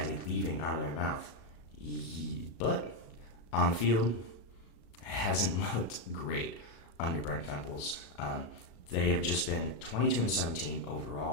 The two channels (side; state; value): right; late; 37 ms